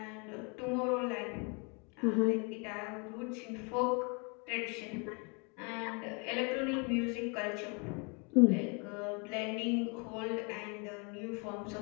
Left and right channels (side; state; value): right; quieter; 33.5 dB